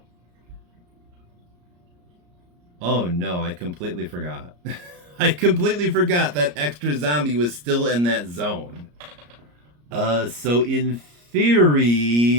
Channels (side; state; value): left; late; 34 ms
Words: Oh no, I completely forgot. I completely forgot that extra zombie was still in that zone. So in